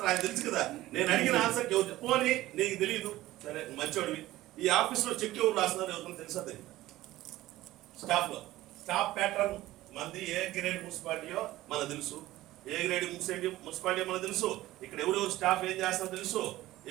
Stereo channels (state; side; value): quieter; left; 16.3 dB